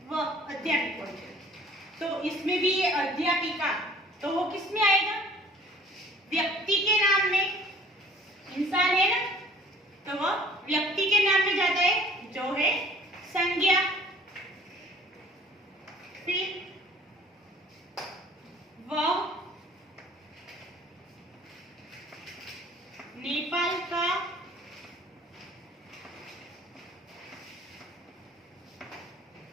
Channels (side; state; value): both; normal; correlation 0.52